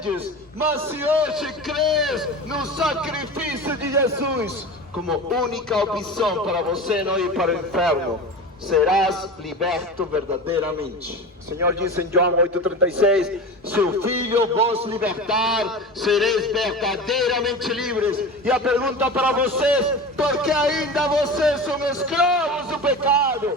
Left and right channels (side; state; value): both; normal; correlation 0.30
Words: mas se hoje crês no sacrifício de Jesus como única opção para você não ir para o inferno, serás liberto verdadeiramente. O Senhor disse em João 8,36: se o Filho vos libertar, sereis verdadeiramente livres. E a pergunta para vocês: por que ainda vocês são escravos do